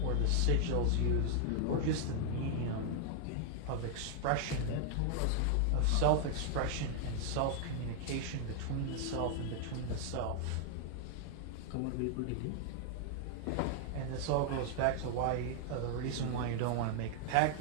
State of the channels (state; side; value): different; both; correlation 0.00